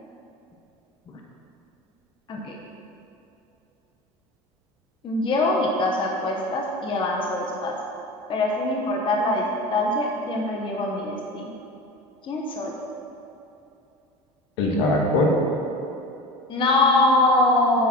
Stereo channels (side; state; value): both; normal; correlation 0.33